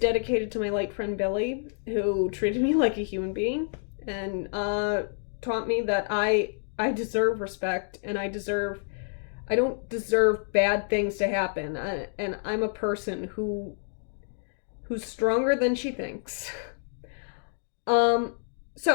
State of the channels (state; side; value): silent; right; digital silence